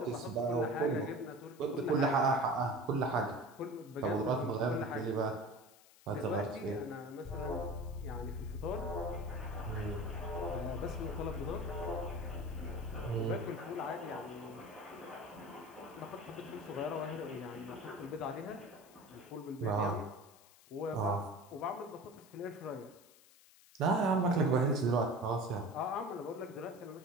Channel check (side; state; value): left; noise; hiss, 24 dB below the sound